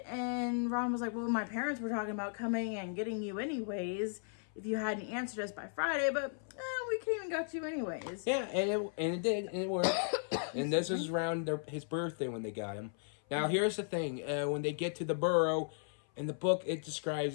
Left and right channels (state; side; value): silent; right; 54 dB below the other